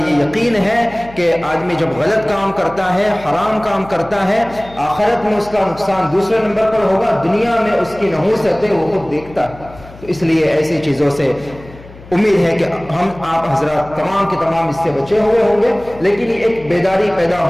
یہ یقین ہے کہ آدمی جب غلط کام کرتا ہے، حرام کام کرتا ہے، آخرت میں اس کا نقصان دوسرے نمبر پر ہوگا، دنیا میں اس کی نحوست ہے وہ خود دیکھتا ہے۔ تو اس لیے ایسی چیزوں سے امید ہے کہ ہم آپ حضرات تمام کے تمام اس سے بچے ہوئے ہوں گے، لیکن یہ ایک بیداری پیدا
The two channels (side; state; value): left; noise; hum, 19 dB below the sound